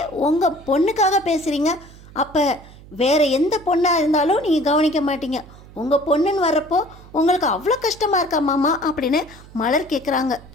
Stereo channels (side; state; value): right; noise; hum, 20 dB below the sound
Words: உங்கள் பொண்ணுக்காக பேசுகிறீங்க. அப்போ வேறு எந்த பொண்ணாக இருந்தாலும் நீங்கள் கவனிக்க மாட்டீங்க. உங்கள் பொண்ணுன்னு வர்றப்போ உங்களுக்கு அவ்வளோ கஷ்டமாக இருக்கா மாமா அப்படின்னு மலர் கேட்குறாங்க.